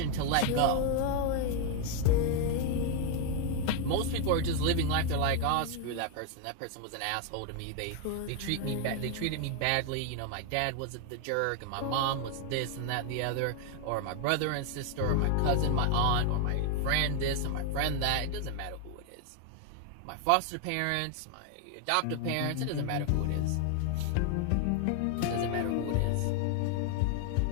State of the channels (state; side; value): different; both; correlation 0.00